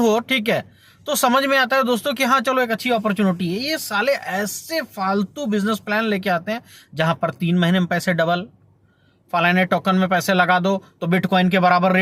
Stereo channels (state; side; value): identical; both; correlation 1.00